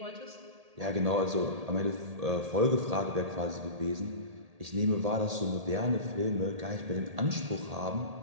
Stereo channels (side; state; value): left; late; 1.8 ms